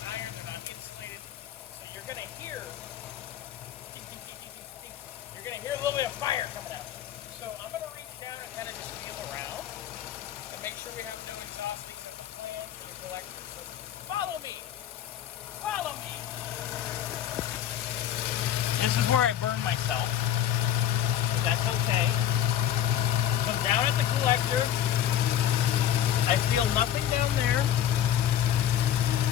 iron, they're not insulated. So you're going to hear a little bit of fire coming out. So I'm going to reach down and kind of just feel around and make sure we have no exhaust leaks at the plant or the collector. So follow me. Follow me. This is where I burn myself. That's okay. Come down at the collector. I feel nothing down there.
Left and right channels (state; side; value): quieter; right; 10.6 dB